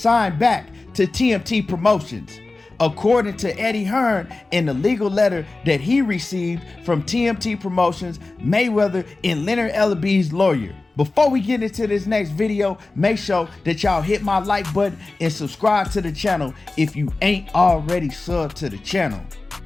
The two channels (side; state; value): right; quieter; 3.3 dB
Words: back to TMT Promotions, according to Eddie Hearn in the legal letter that he received from TMT Promotions, Mayweather and Leonard Ellaby's lawyer. Before we get into this next video, make sure that y'all hit my like button and subscribe to the channel if you ain't already subbed to the channel.